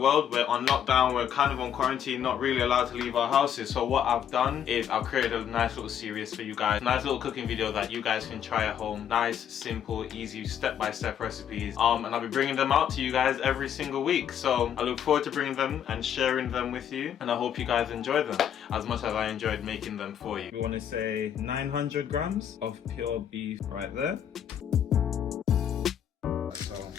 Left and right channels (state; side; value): quieter; right; 9.2 dB